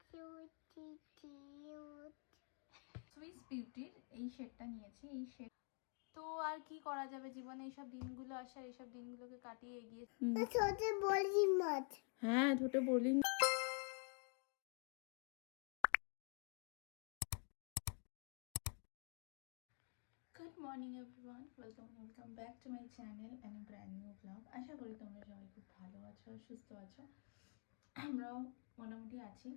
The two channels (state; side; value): quieter; right; 38.8 dB